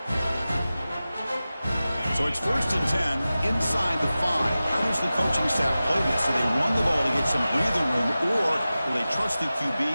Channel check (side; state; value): both; inverted; correlation -0.95